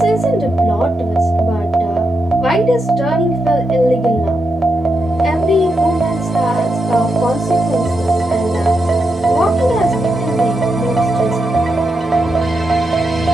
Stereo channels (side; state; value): both; normal; correlation 0.85